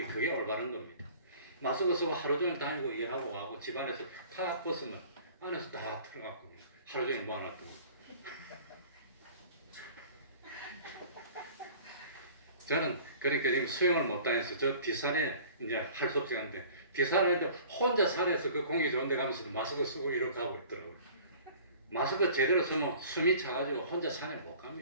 그게 올바른 겁니다. 마스크 쓰고 하루 종일 다니고 일하고 와고 집안에서 탁 벗으면 안에서 다 들어가고 하루 종일 모아놨더니 저는 그러니까 지금 수영을 못 다녀서 저 뒷산에 이제 할 수 없이 가는데 뒷산에 혼자 산에서 그 공기 좋은 데 가면서도 마스크 쓰고 이렇게 하고 있더라고요. 마스크 제대로 쓰면 숨이 차가지고 혼자 산에 못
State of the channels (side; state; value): both; inverted; correlation -0.47